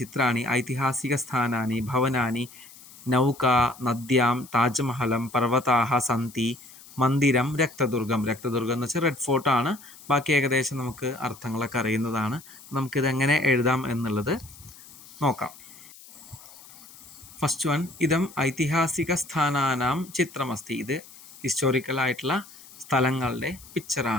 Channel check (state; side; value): noise; left; hiss, 20 dB below the sound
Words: ചിത്രാണി ഐതിഹാസിക സ്ഥാനാനി ഭവനാനി നൗക നദ്യാം താജ്മഹലം പർവ്വതാഹ സന്തി മന്ദിരം രക്തദുർഗം. രക്തദുർഗം എന്ന് വെച്ചാൽ റെഡ് ഫോർട്ടാണ്. ബാക്കി ഏകദേശം നമുക്ക് അർത്ഥങ്ങളൊക്കെ അറിയുന്നതാണ്. നമുക്കിതെങ്ങനെ എഴുതാം എന്നുള്ളത് നോക്കാം. ഫസ്റ്റ് വൺ, ഇതം ഐതിഹാസിക സ്ഥാനാനാം ചിത്രമസ്തി. ഇത് ഹിസ്റ്റോറിക്കലായിട്ടുള്ള സ്ഥലങ്ങളുടെ